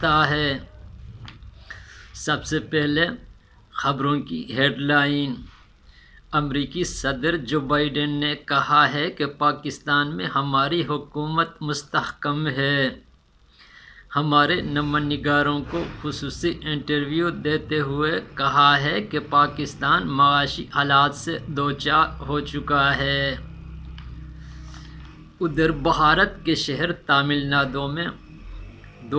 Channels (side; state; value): both; identical; correlation 1.00